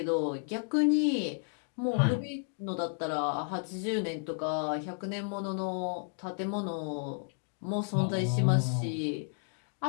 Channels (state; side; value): silent; right; 56 dB below the other